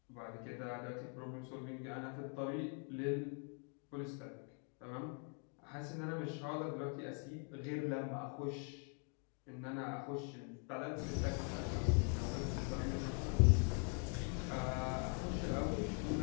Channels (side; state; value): right; quieter; 39.4 dB